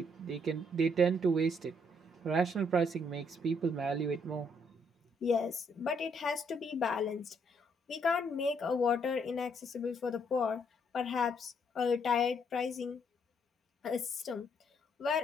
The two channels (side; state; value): both; normal; correlation 0.71